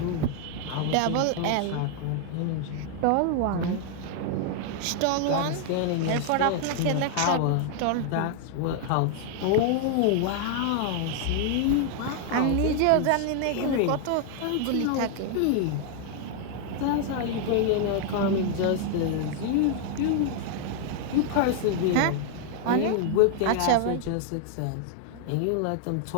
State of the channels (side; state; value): both; different; correlation 0.00